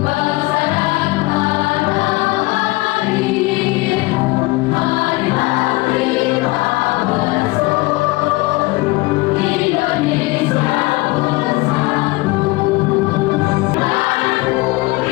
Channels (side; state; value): right; quieter; 22.1 dB